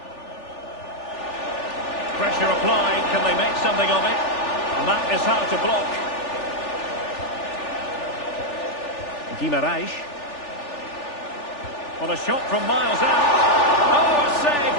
Pressure applied, can they make something of it? And that is how to block. Guimaraes. Well, a shot from miles out. Oh, a save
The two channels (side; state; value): right; late; 3.4 ms